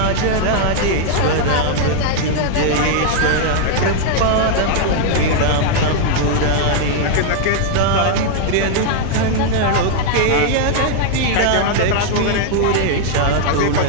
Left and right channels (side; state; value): both; different; correlation 0.00